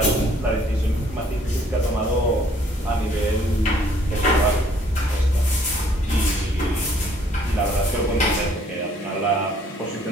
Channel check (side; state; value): both; normal; correlation 0.62